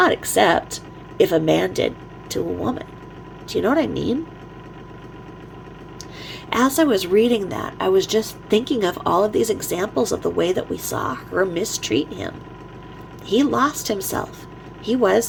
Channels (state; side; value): identical; both; correlation 1.00